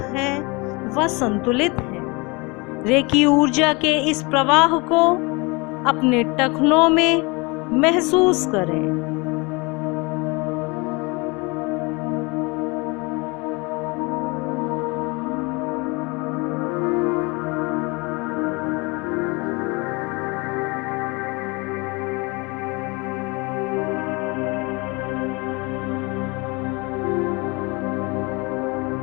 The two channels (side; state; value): right; quieter; 27.4 dB